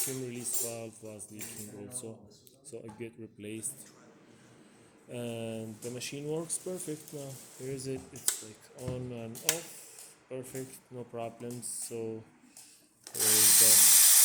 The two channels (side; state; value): both; identical; correlation 1.00